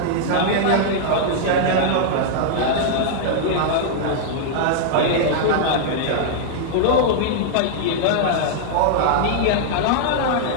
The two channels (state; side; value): different; both; correlation -0.01